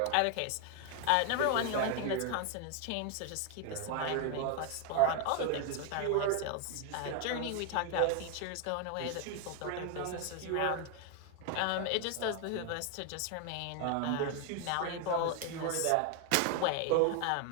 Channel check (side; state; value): both; different; correlation 0.01